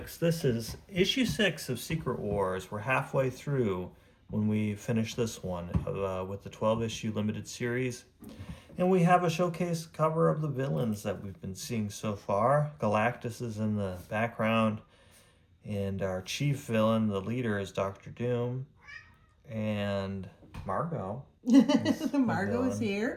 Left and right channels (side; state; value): both; identical; correlation 1.00